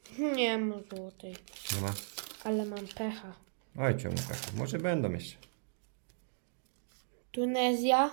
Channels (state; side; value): silent; left; digital silence